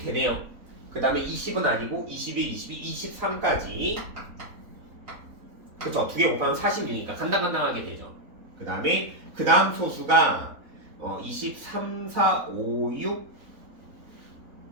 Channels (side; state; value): left; late; 3.9 ms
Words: 되네요. 그 다음에 20은 아니고 21, 22, 23까지 그쵸. 두 개 곱하면 46이니까 간당간당하게 되죠. 그 다음에 그 다음 소수가 23, 4, 5, 6,